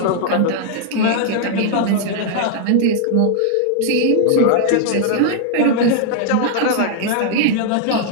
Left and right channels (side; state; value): both; different; correlation 0.00